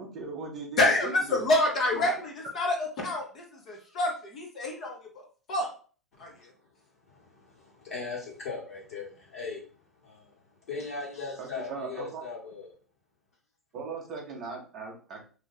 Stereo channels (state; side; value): normal; both; correlation 0.37